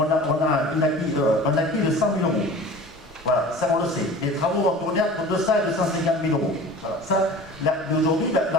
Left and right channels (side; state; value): both; normal; correlation 0.40